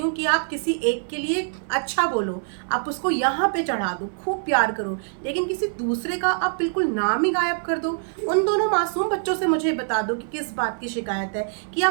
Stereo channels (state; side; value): silent; left; 62 dB below the other